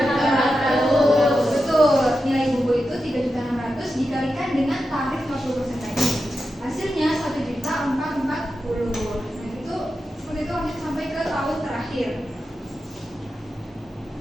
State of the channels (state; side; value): normal; both; correlation 0.90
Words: Betul, nilai buku itu 3.600.000 dikalikan dengan tarif 50% tadi. Hasilnya 1.440.000. Nah itu seperti itu lanjut sampai ke tahun terakhir.